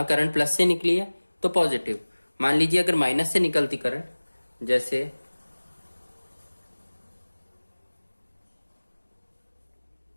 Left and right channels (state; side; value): inverted; both; correlation -1.00